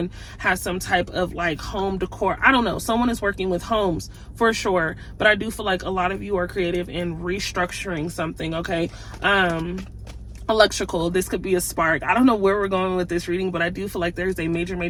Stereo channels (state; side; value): identical; both; correlation 1.00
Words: has some type of like home decor. I don't know. Someone is working with homes for sure. But I do feel like a lot of you are creative in restructuring something, okay? electrical. This could be a spark. I don't know where we're going with this reading, but I do feel like there's a